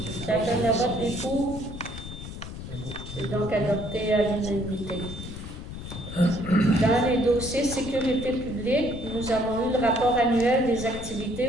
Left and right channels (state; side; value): noise; left; rumble, 10 dB below the sound